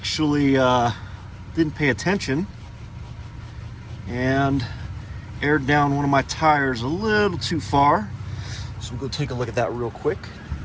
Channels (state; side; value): identical; both; correlation 1.00